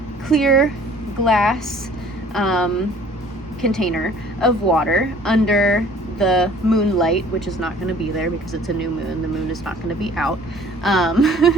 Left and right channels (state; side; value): normal; both; correlation 0.53